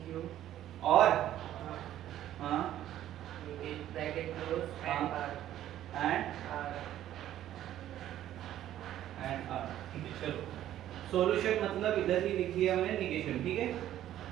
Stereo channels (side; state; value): left; quieter; 12.4 dB